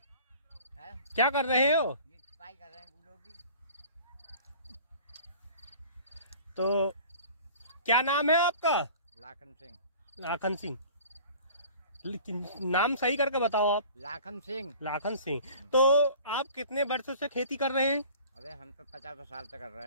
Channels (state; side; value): inverted; both; correlation -0.45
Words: क्या कर रहे हो? सफाई कर रहे हैं गुलों की। तो क्या नाम है आपका? लाखन सिंह। लाखन सिंह, लेकिन नाम सही करके बताओ आप। लाखन सिंह। लाखन सिंह। तो आप कितने वर्षों से खेती कर रहे हैं? अरे हम तो 50 साल से कर